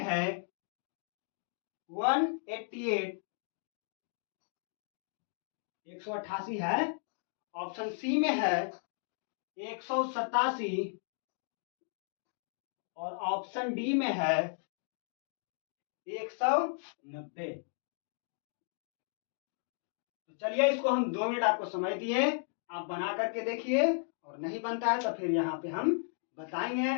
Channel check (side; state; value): right; silent; digital silence